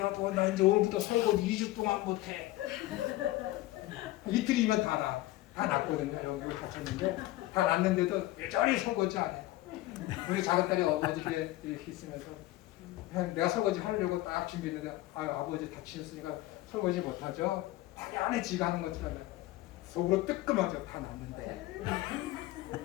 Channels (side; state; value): right; quieter; 17.2 dB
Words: 나 이제 오늘부터 설거지 2주 동안 못해. 이틀이면 다 났거든요. 여기 다쳤는데 다 났는데도 여전히 설거지 안 해. 우리 작은 딸이 어머니께 이렇게 있으면서 내가 설거지 하려고 딱 준비했는데 아버지 다치셨으니까 설거지 못하죠. 당연히 지가 하는 것처럼 속으로 뜨끔하죠. 다 났는데.